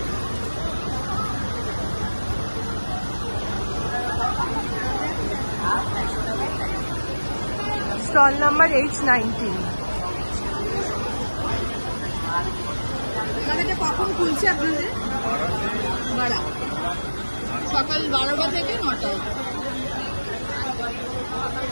Stall number H19। দাদা এটা কখন খুলছে আপনাদের? বাড়া সকাল 12টা থেকে 9টা।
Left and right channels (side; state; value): both; inverted; correlation -1.00